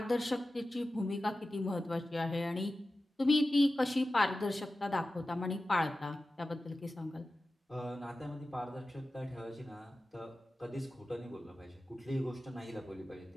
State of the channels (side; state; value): both; normal; correlation 0.94